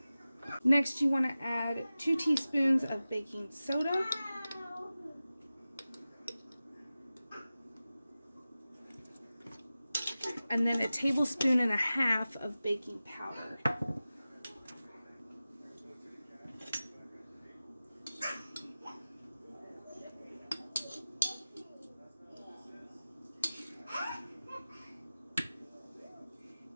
Next, you want to add 2 teaspoons of baking soda. And then 1.5 tablespoons of baking powder.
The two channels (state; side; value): inverted; both; correlation -0.96